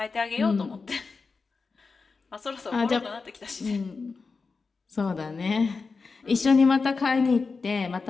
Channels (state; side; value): quieter; right; 4.5 dB